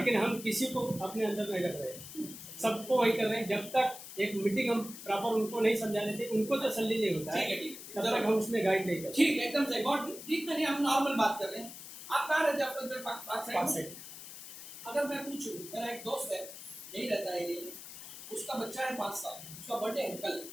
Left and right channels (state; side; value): noise; left; hiss, 13 dB below the sound